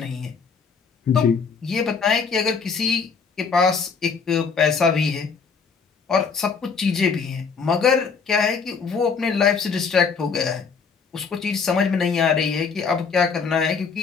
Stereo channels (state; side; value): quieter; right; 5.5 dB